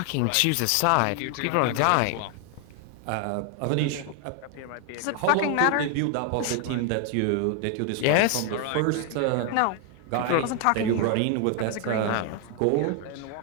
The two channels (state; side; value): different; both; correlation 0.00